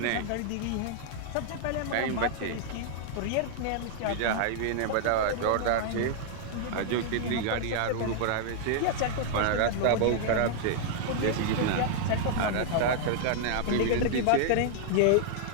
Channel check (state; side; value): different; both; correlation -0.01